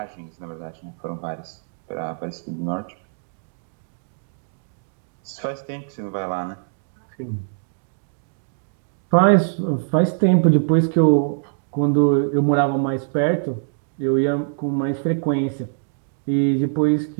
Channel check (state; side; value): silent; left; digital silence